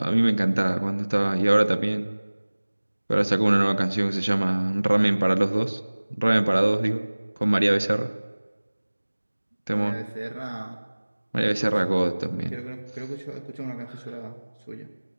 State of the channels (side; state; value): both; inverted; correlation -1.00